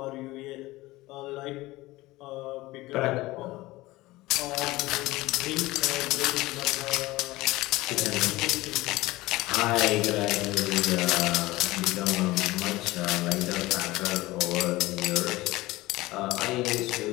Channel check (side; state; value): right; quieter; 19.2 dB